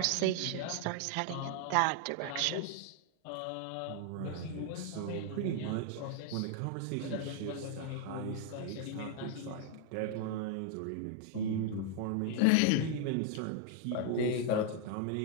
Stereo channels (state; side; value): different; both; correlation 0.00